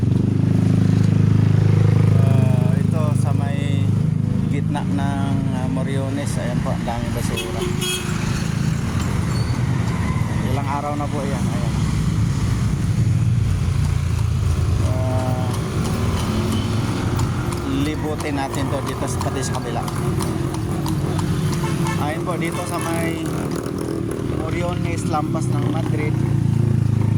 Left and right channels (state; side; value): identical; both; correlation 1.00